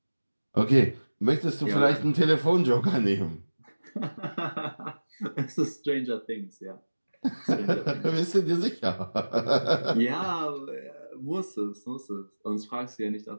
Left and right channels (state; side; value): inverted; both; correlation -1.00